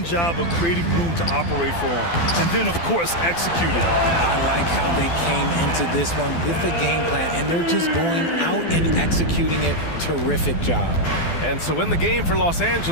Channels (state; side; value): late; right; 12 ms